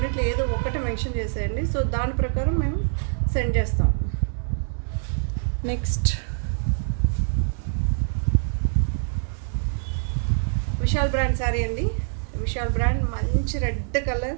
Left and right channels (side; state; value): left; silent; digital silence